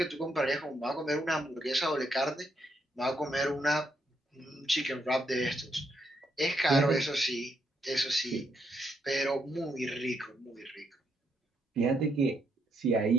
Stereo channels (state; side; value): normal; both; correlation 0.77